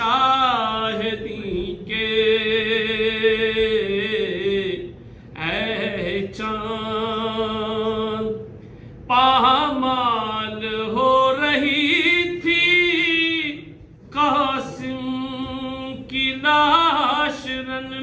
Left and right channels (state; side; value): identical; both; correlation 1.00